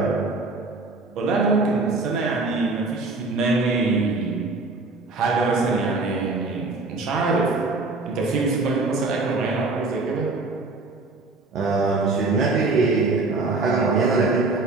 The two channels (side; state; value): left; quieter; 3.5 dB